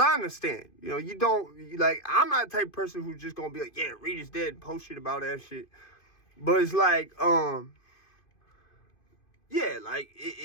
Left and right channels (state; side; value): late; right; 2.5 ms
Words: I understand, you know, you don't, like, I'm not the type of person who's just going to be like, yeah, Reid is dead, post shit about that shit. But it's like, yeah, like,